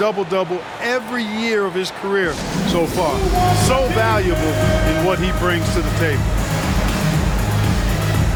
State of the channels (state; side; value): identical; both; correlation 1.00